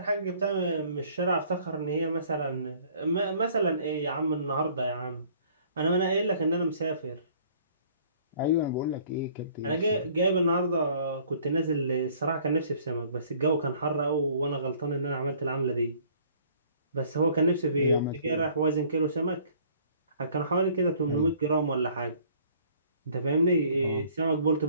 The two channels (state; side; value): inverted; both; correlation -0.56